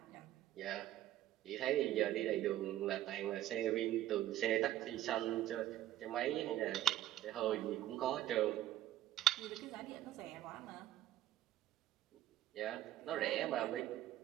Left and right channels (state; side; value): quieter; left; 13.5 dB